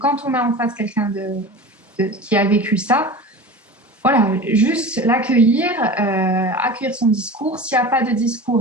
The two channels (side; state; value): both; normal; correlation 0.33